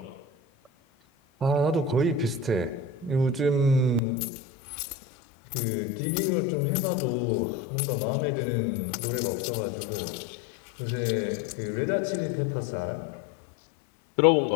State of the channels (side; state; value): right; drops out; at 4.0 s